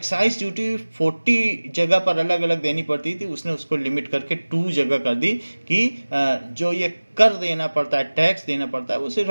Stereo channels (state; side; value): inverted; both; correlation -1.00